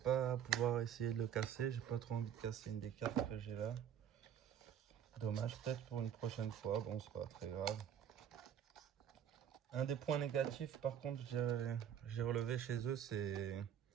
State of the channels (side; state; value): left; quieter; 9.2 dB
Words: pouvoir essayer de le casser. J'ai pas trop envie de casser une des cartes que j'ai là. Dommage, peut-être pour une prochaine fois. Bon, c'est pas très grave. Un des points négatifs, par contre, j'ai relevé chez eux, c'est